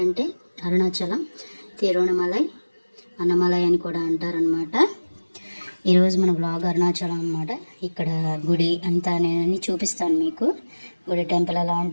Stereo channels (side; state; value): both; inverted; correlation -1.00